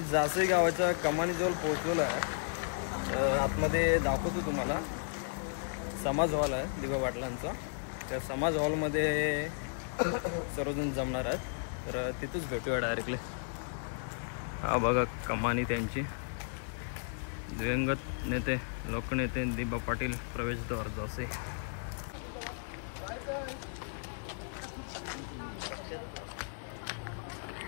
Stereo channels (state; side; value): silent; right; 55 dB below the other